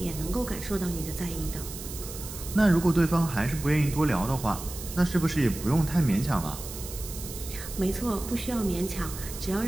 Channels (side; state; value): right; noise; hiss, 11 dB below the sound